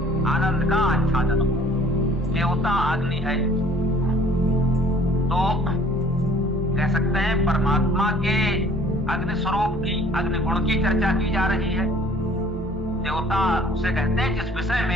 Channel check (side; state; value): both; normal; correlation 0.54